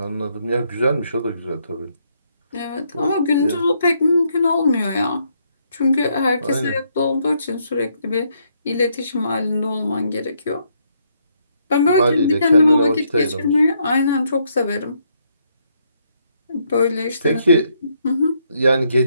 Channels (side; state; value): both; inverted; correlation -0.74